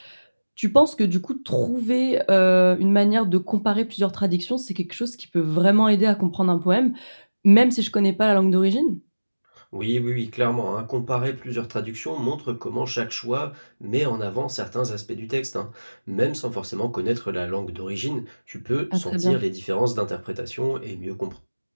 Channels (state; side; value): inverted; both; correlation -1.00